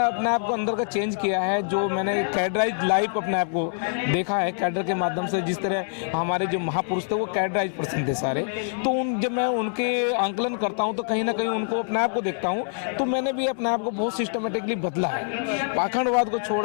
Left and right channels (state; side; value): silent; right; digital silence